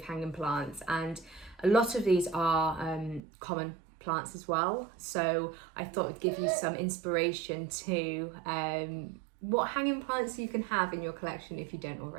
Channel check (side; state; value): left; drops out; at 3.2 s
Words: hanging plants, and a lot of these are common plants as well. So I thought it'd give you some inspiration to what hanging plants you can have in your collection if you don't